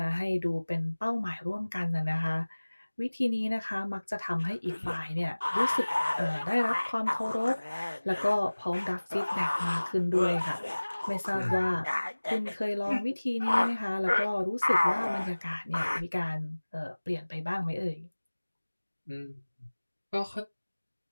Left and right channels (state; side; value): inverted; both; correlation -1.00